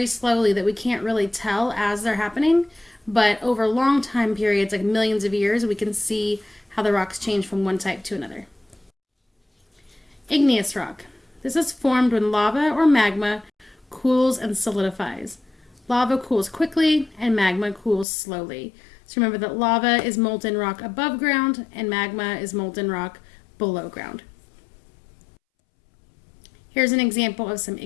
slowly that we can't really tell as they're happening, but over long time periods, like millions of years, we can see how the rocks change from one type to another. Igneous rock. This is formed when lava or magma cools and solidifies. Lava cools quickly and magma cools slowly. So remember that lava is molten rock above ground and magma is molten rock below ground. Here's an example of some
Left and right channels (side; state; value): right; drops out; at 18.1 s